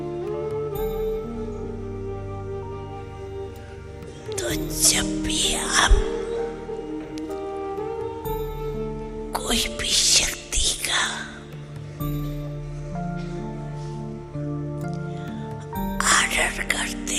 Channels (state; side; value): identical; both; correlation 1.00